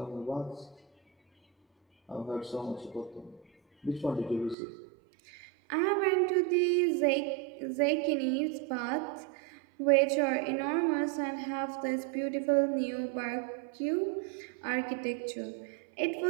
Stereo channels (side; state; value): left; drops out; at 4.5 s